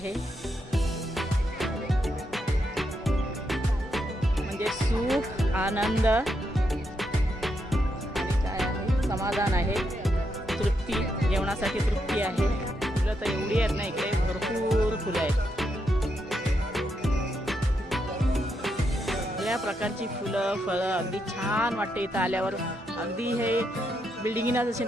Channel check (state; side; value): normal; both; correlation 0.81